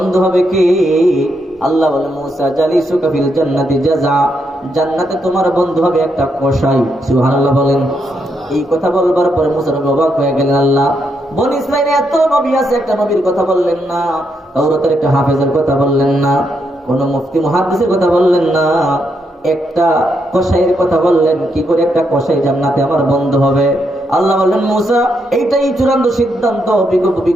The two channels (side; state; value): both; normal; correlation 0.79